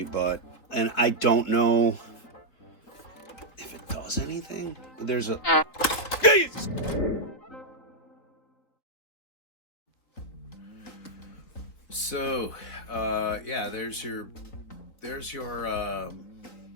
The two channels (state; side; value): late; right; 4.1 ms